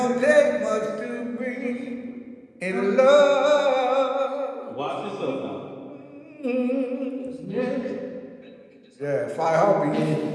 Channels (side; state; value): both; identical; correlation 1.00